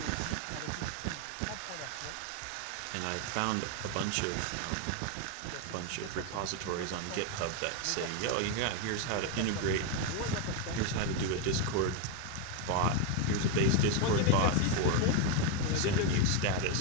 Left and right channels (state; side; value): different; both; correlation 0.02